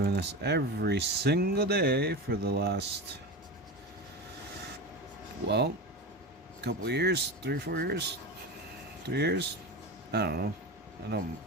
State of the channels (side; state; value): both; normal; correlation 0.24